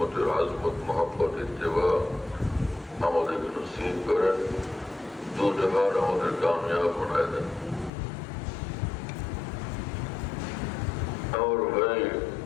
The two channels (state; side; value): drops out; right; at 7.9 s